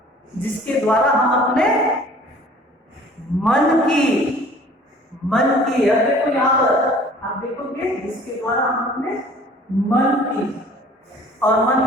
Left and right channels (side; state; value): both; normal; correlation 0.51